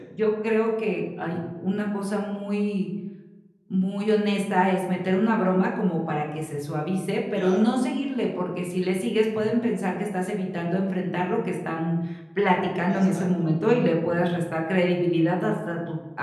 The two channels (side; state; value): both; identical; correlation 1.00